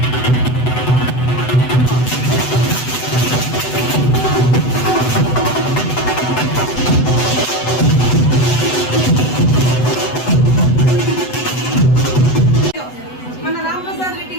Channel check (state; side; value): late; right; 8.0 ms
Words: మన రాంప్రసాద్ రెడ్డి